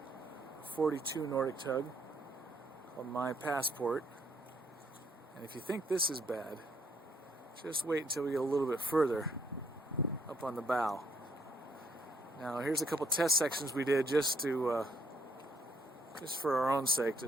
42 Nordic tug called My Passport. And if you think this is bad, just wait until we get a little bit further up on the bow. Now here's a couple test sections we did just for our own sake,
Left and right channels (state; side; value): normal; both; correlation 0.69